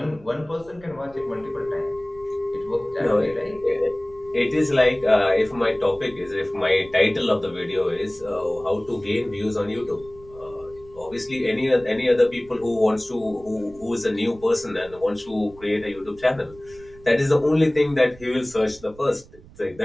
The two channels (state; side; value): noise; right; rumble, 23 dB below the sound